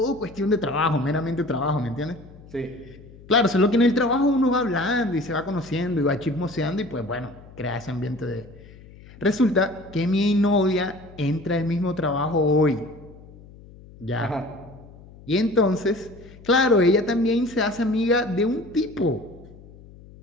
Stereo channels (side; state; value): left; noise; hum, 21 dB below the sound